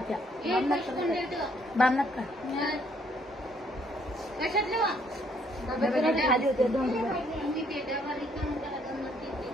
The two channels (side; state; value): both; normal; correlation 0.66